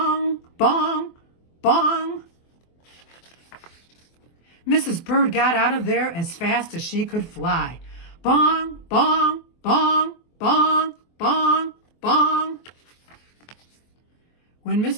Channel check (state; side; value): late; right; 24 ms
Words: bong, bong. Mrs. Bird got out of there as fast as she could fly. Bong, bong, bong, bong, bong, bong. When